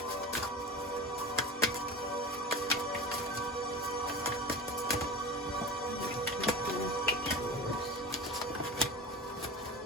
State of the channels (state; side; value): normal; both; correlation 0.30